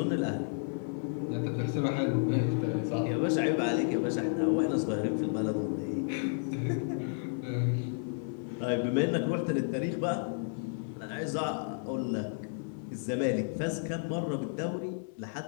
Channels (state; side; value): silent; right; 56 dB below the other